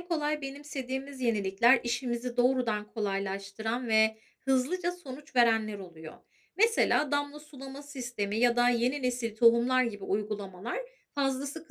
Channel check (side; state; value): both; identical; correlation 1.00